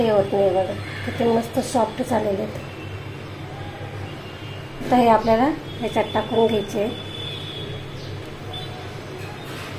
होत नाही. बघा किती मस्त सॉफ्ट झालेले आहेत. आता हे आपल्याला ह्याच्यात टाकून घ्यायचे.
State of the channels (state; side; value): identical; both; correlation 1.00